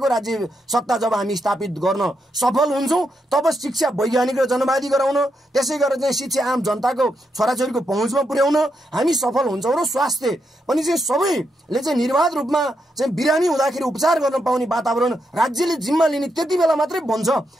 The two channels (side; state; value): both; normal; correlation 0.82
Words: राज्य सत्ता जब हामी स्थापित गर्न सफल हुन्छौँ तब शिक्षा वैज्ञानिक र जनवादी गराउन, त्यसै गरेर चाहिँ शिक्षा आम जनताको छोराछोरीको पहुँचमा पुर्याउन हामी सफल हुन्छौँ र स्वास्थ्य पनि चाहिँ सबैले चाहिँ निर्वाध रूपमा चाहिँ बिरामी हुँदाखेरि उपचार गर्न पाउने वातावरण राज्यले जिम्मा लिने त्यति बेला मात्रै बन्छ